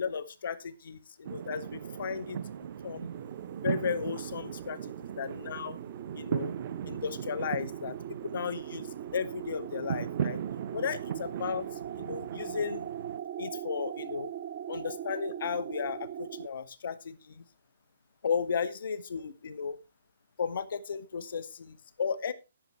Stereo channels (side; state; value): both; inverted; correlation -0.63